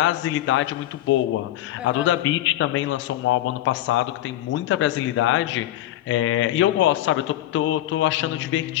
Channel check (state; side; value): quieter; right; 14.2 dB